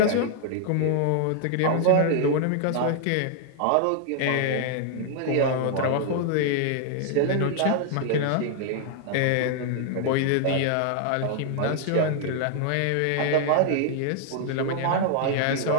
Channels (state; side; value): different; both; correlation 0.00